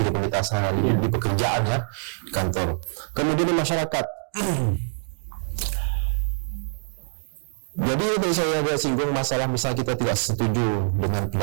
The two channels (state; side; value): silent; left; digital silence